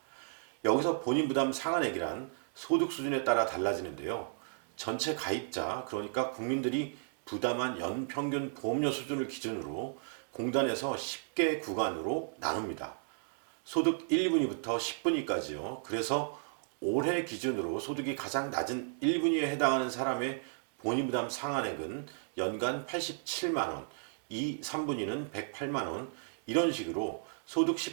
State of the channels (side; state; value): left; silent; digital silence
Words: 여기서 본인 부담 상한액이란 소득 수준에 따라 달라지는데요. 전체 가입자, 그러니까 국민들이 부담한 연평균 보험료 수준을 기준으로 공단에서 10개 구간으로 나눕니다. 소득 1분위부터 10분위까지요. 그래서 올해 기준으로 소득이 가장 낮은 1분위에 해당하는 사람의 본인부담 상한액은 연간 87만 원, 2, 3분위는 108만 원, 이런 식으로 소득